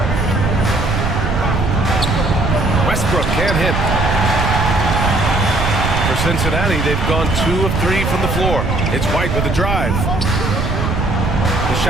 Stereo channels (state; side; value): noise; right; rumble, 1 dB below the sound